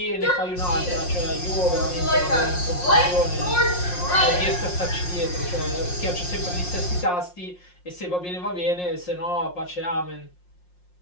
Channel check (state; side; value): late; right; 5.6 ms